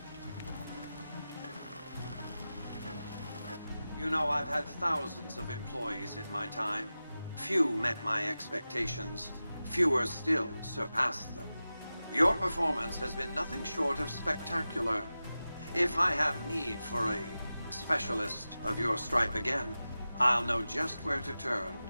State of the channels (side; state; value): both; inverted; correlation -0.94